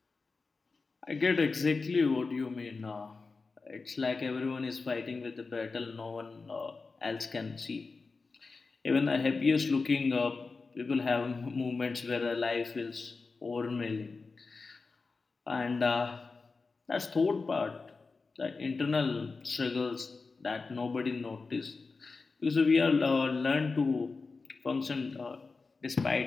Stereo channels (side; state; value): right; quieter; 4.2 dB